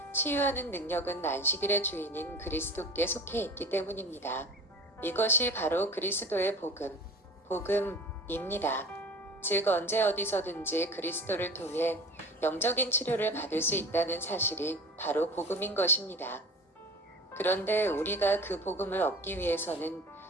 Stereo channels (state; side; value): normal; both; correlation 0.38